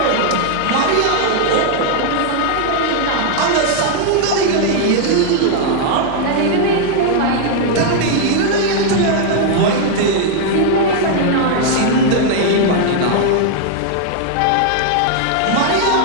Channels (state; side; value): different; both; correlation 0.00